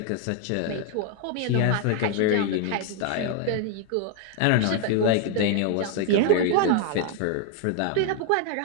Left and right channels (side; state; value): both; different; correlation 0.01